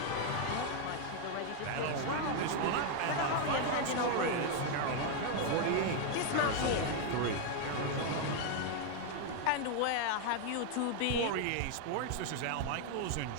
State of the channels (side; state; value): both; different; correlation 0.01